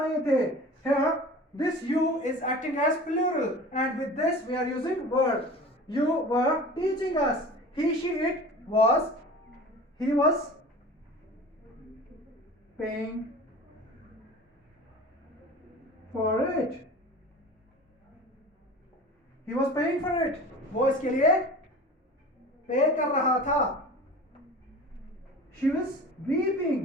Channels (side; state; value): both; normal; correlation 0.39